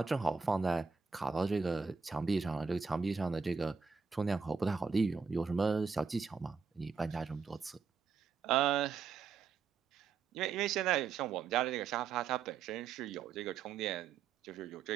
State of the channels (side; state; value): left; quieter; 5.6 dB